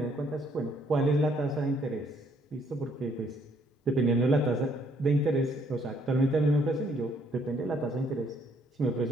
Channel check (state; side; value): normal; both; correlation 0.67